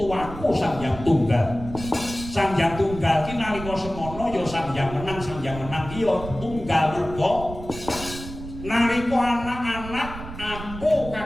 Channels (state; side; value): noise; right; rumble, 12 dB below the sound